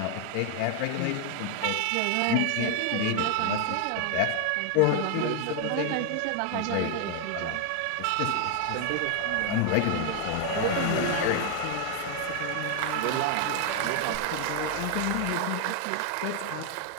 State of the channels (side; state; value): both; different; correlation 0.00